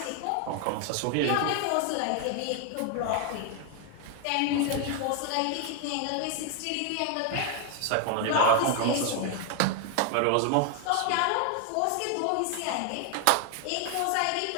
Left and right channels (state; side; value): different; both; correlation 0.00